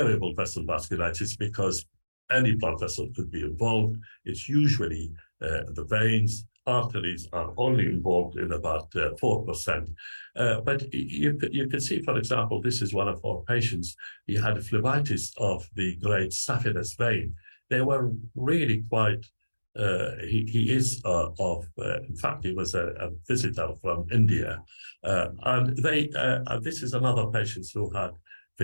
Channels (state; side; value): inverted; both; correlation -1.00